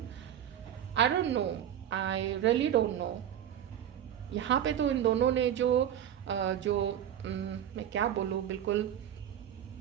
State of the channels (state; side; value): quieter; left; 10.2 dB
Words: I don't know, I really don't know. यहाँ पे तो इन दोनों ने मैं क्या बोलूँ, बिल्कुल